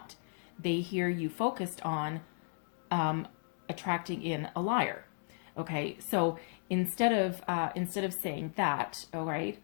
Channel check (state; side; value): silent; right; 55 dB below the other